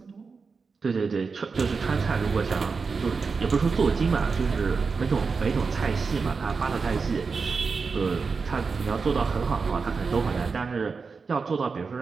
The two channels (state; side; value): quieter; left; 4.9 dB